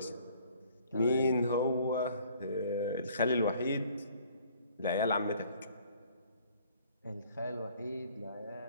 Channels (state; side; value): inverted; both; correlation -0.58